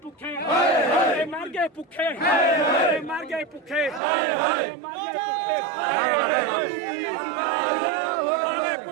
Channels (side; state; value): left; drops out; at 4.0 s